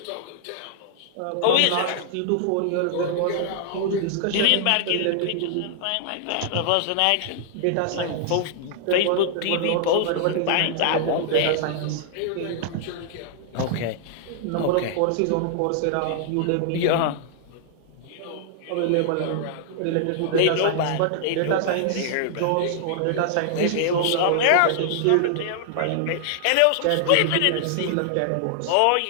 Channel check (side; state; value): both; different; correlation -0.01